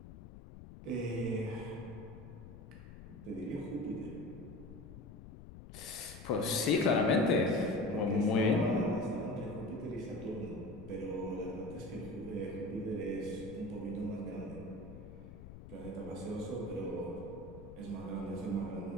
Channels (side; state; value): left; noise; rumble, 14 dB below the sound